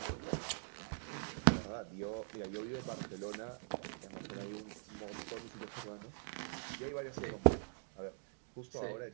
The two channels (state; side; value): silent; left; digital silence